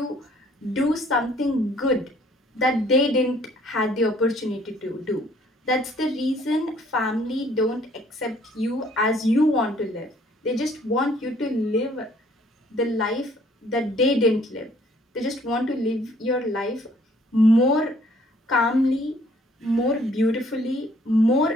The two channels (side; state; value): both; normal; correlation 0.61